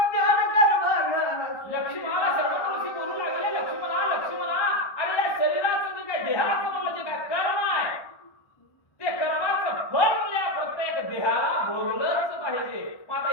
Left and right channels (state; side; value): late; right; 1.1 ms